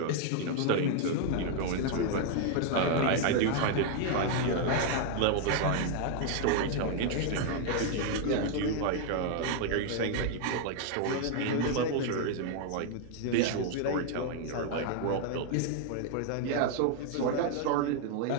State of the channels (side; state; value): both; different; correlation 0.00